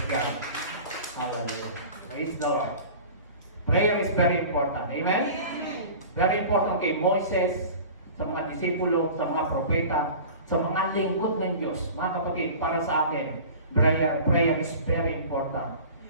God. Hallelujah. Praise the Lord. Prayer is very important. Amen? Very important kay Moses, sa mga disipulo, sa mga propeta, sa mga lingkod ng Diyos. Mga kapatid, para sa atin, prayer is very important.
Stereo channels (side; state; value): both; inverted; correlation -0.39